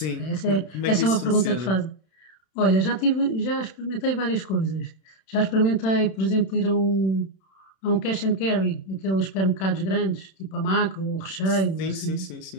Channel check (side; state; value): right; late; 31 ms